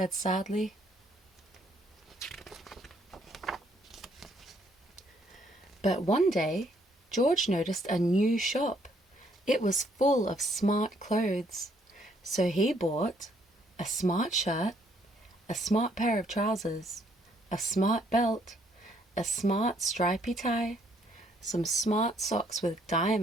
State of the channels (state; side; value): normal; both; correlation 0.68